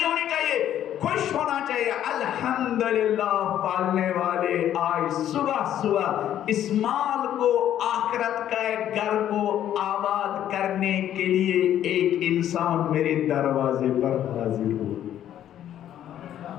ہونی چاہیے، خوش ہونا چاہیے۔ الحمدللہ پالنے والے آج صبح صبح اس مال کو، آخرت کا گھر کو آباد کرنے کے لیے ایک انسان میرے دروازے پر حاضر ہو۔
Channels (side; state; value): right; quieter; 11.1 dB